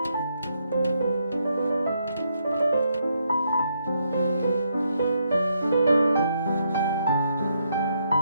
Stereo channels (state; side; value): inverted; both; correlation -0.77